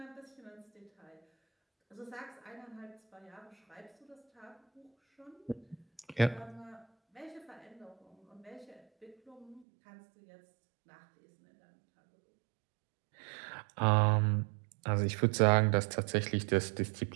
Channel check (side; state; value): left; drops out; at 9.7 s